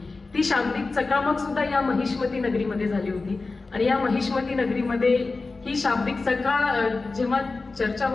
ती शाब्दिक चकामक सुद्धा या महिष्मती नगरीमध्ये झाली होती. आणि या महिष्मती नगरीमध्ये ही शाब्दिक जेव्हा चर्चा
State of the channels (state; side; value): quieter; right; 3.7 dB